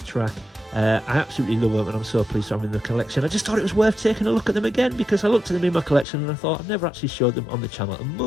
track. I absolutely love them and I'm so pleased to have them in the collection. I just thought it was worth taking a look at them again because I looked at them in my collection and I thought I've never actually showed them on the channel, and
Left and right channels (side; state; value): right; drops out; at 6.1 s